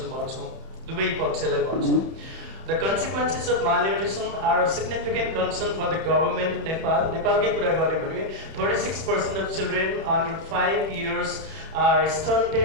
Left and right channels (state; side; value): late; left; 31 ms